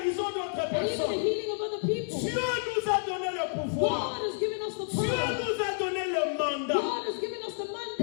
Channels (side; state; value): right; silent; digital silence